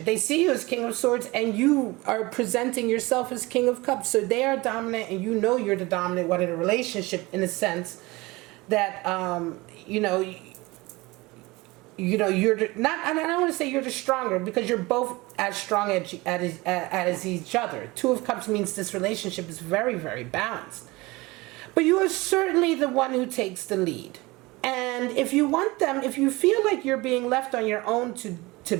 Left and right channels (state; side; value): quieter; left; 22.4 dB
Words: They see you as King of Swords and you are presenting yourself as King of Cups. So they are dominant and you know you're the dominant one in a relationship, in a sense that, you're not, and I don't want to say you're the stronger because you're both as strong as each other. 2 of Cups means this relationship is very, very balanced. But you are certainly the one who takes the lead. And if you want them, if you feel like you're being left on your own to to